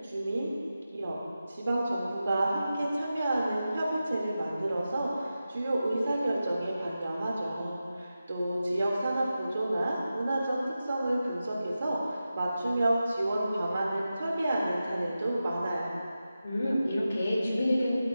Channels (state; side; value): inverted; both; correlation -0.92